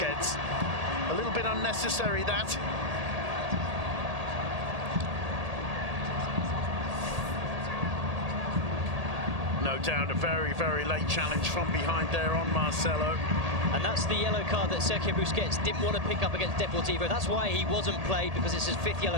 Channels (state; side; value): late; left; 1.8 ms